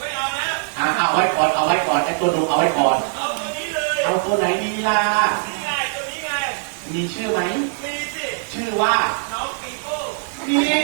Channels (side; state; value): left; silent; 59 dB below the other